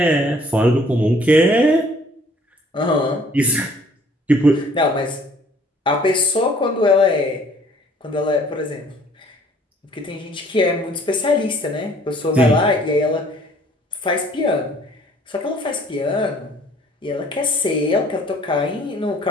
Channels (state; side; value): normal; both; correlation 0.57